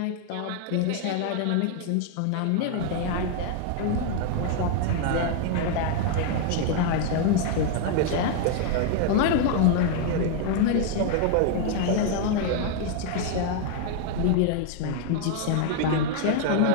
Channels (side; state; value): both; different; correlation 0.00